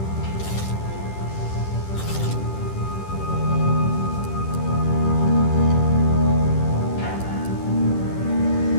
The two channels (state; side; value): late; right; 10 ms